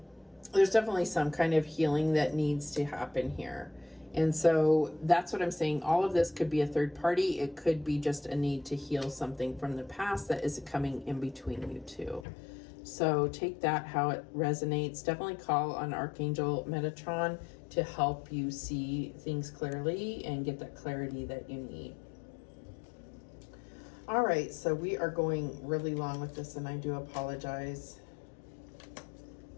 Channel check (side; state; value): right; drops out; at 12.2 s